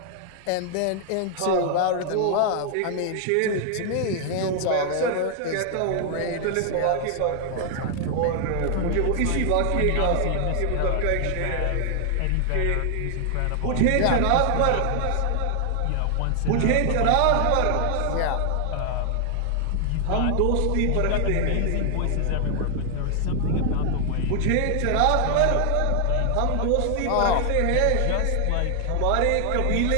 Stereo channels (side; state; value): both; different; correlation 0.00